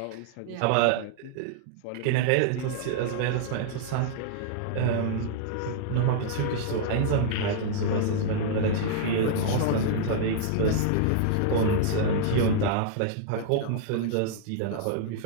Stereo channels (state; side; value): different; both; correlation -0.01